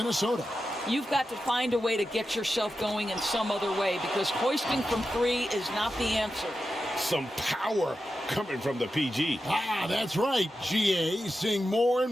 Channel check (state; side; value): normal; both; correlation 0.90